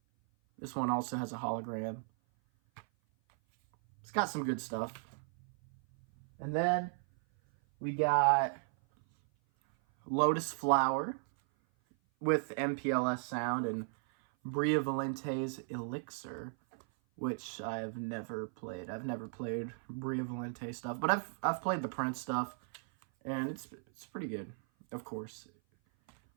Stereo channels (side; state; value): left; silent; 54 dB below the other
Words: This one also has a hologram. It's got some good stuff. And then we got Lotus Flower with MPLS sound and Bria Valente's Elixir, which I've never played. I've never played Bria Valente stuff, but I've played the Prince stuff, and it's pretty good, of course.